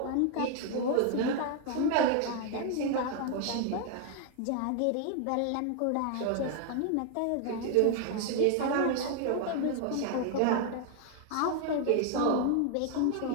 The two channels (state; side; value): different; both; correlation 0.00